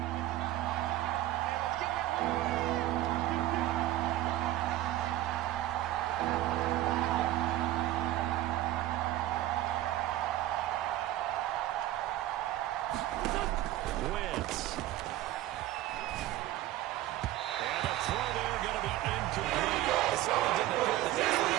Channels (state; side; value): quieter; left; 14.8 dB